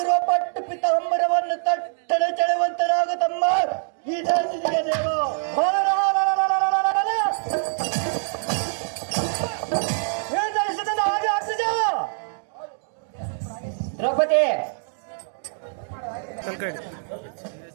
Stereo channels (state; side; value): silent; left; digital silence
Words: ಪಟ್ಟು ಪಿತಾಂಬರವನ್ನು ತಟ್ಟನೆ ಚೆಳುವಂತನಾಗ ತಮ್ಮ ಈ ಜಾತಿಗೆ ದೇವ ಹಾಗೆ ಅಗ್ರಜ ದ್ರೌಪದಿ